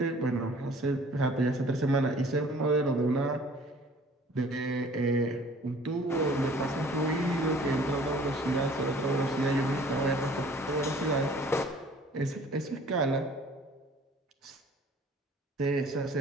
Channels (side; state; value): both; normal; correlation 0.52